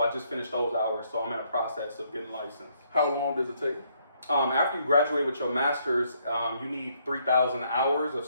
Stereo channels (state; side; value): inverted; both; correlation -0.71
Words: I just finished those hours, so I'm in a process of getting licensed. How long does it take? After you graduate with your master's, you need 3,000 hours of